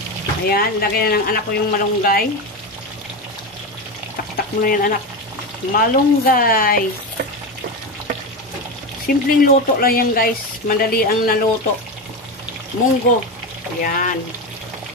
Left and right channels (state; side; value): normal; both; correlation 0.18